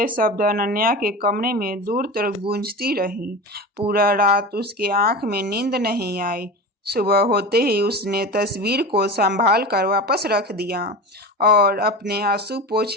शब्द अनन्या के कमरे में दूर तक गूंजती रही। पूरा रात उसके आंख में नींद नहीं आई। सुबह होते ही उसने तस्वीर को संभाल कर वापस रख दिया और अपने आंसू पोंछ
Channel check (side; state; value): both; normal; correlation 0.28